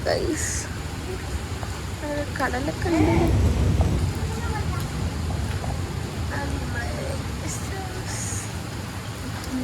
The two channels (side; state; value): both; identical; correlation 1.00